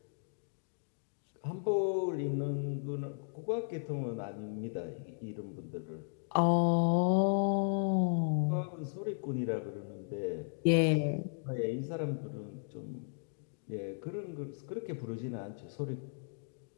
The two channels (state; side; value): silent; right; digital silence